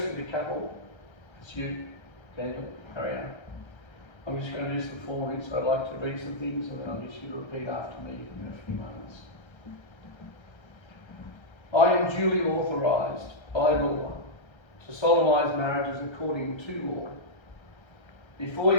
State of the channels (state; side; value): late; right; 1.3 ms